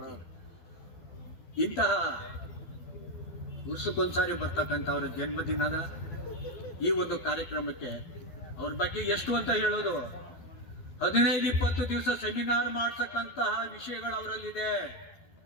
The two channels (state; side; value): late; right; 12 ms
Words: ಇಂತಹ ವರ್ಷಕ್ಕೊಂದ್ಸಾರಿ ಬರ್ತಕ್ಕಂಥ ಅವರ ಜನ್ಮದಿನದ ಈ ಒಂದು ಕಾರ್ಯಕ್ರಮಕ್ಕೆ ಅವ್ರ ಬಗ್ಗೆ ಎಷ್ಟು ಅಂತ ಹೇಳೋದು, 15-20 ದಿವಸ ಸೆಮಿನಾರ್ ಮಾಡ್ತಕ್ಕಂತಹ ವಿಷಯಗಳು ಅವರಲ್ಲಿದೆ.